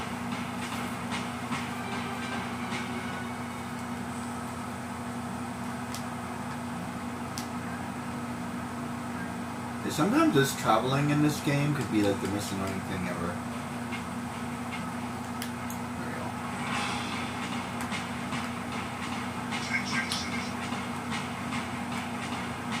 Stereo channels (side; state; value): both; identical; correlation 1.00